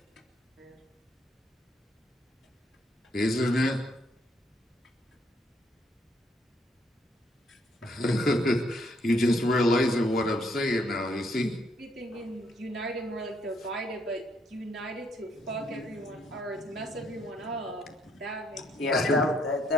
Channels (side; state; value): both; normal; correlation 0.71